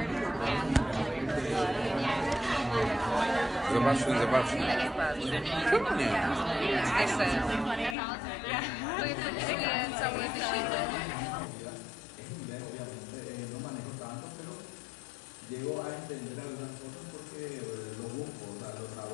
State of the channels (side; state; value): right; drops out; at 8.0 s